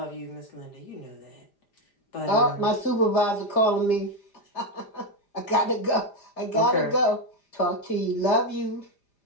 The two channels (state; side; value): late; right; 4.9 ms